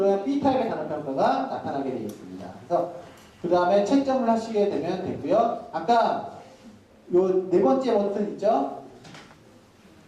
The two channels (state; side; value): identical; both; correlation 1.00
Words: B타입의 단어평가가 나타나게 되어 있습니다. 그래서 그 다음에 채점을 하시게 되면 되고요. 아까 요 네 번째 버튼 있죠?